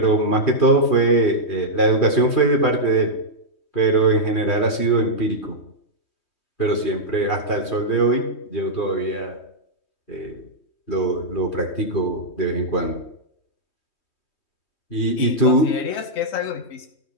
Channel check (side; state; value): right; late; 3.2 ms